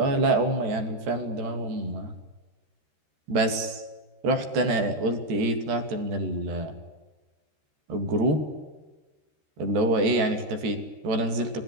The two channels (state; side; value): late; left; 13 ms